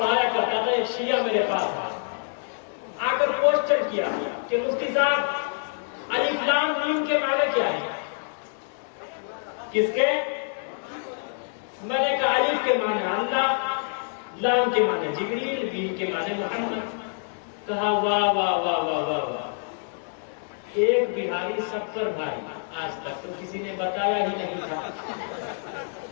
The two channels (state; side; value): silent; right; 61 dB below the other